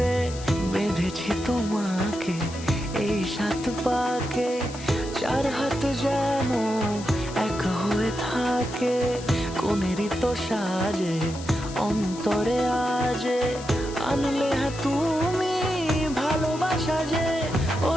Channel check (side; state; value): left; noise; hiss, 15 dB below the sound